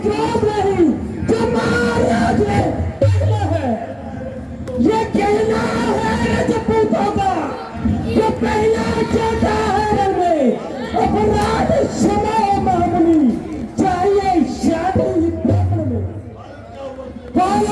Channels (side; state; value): both; identical; correlation 1.00